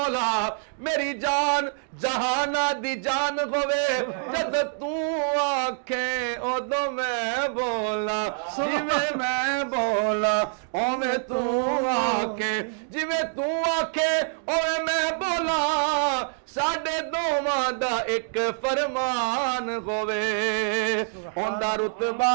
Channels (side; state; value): left; silent; digital silence